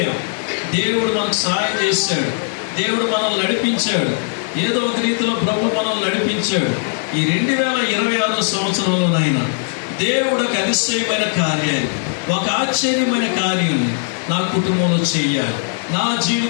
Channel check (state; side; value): silent; right; digital silence